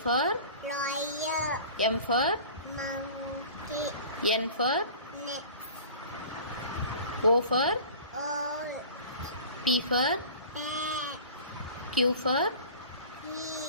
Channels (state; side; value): inverted; both; correlation -0.42